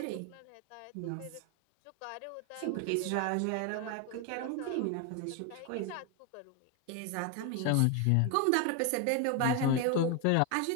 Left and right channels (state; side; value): different; both; correlation 0.01